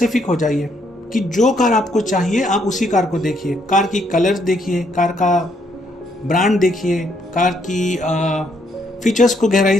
हो जाइए कि जो कार आपको चाहिए आप उसी कार को देखिए। कार की कलर्स देखिए, कार का ब्रांड देखिए, कार की फीचर्स को गहराई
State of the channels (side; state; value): both; normal; correlation 0.72